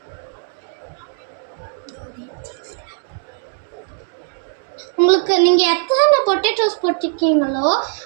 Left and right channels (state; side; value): silent; left; digital silence